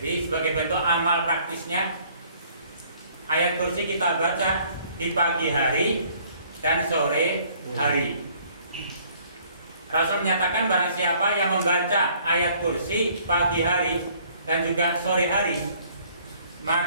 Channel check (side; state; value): both; inverted; correlation -0.59